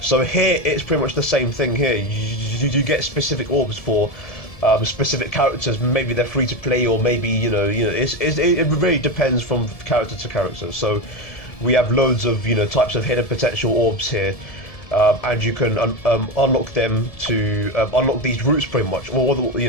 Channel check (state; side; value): late; right; 1.7 ms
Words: here it's pretty much the same thing. Here you get specific orbs for specific characters. Maybe they're free to play, or maybe it really depends from character to character. So we have loads of types of hidden potential orbs here, and you can unlock them to unlock these routes pretty much. Or